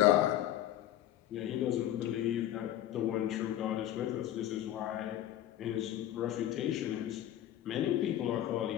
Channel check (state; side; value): quieter; right; 12.5 dB